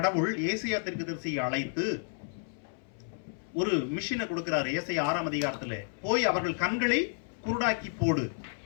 ஏசாயா தீர்க்கதரிசியை அழைத்து ஒரு மிஷினை கொடுக்கிறார். ஏசாயா 6ஆம் அதிகாரத்தில் போய் அவர்கள் கண்களை குருடாக்கி போடு,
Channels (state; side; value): silent; right; 57 dB below the other